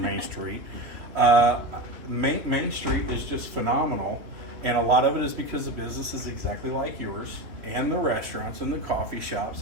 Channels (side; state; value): left; late; 3.2 ms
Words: Main Street. Main Street is just phenomenal. And a lot of it is because the business is exactly like yours, and the restaurants and the coffee shops